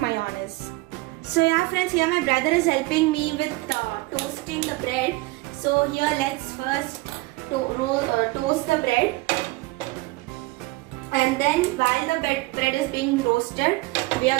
So yeah friends, here my brother is helping me with toasting the bread. So here let's first toast the bread. And then while the bread is being roasted, we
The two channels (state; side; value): quieter; left; 21.5 dB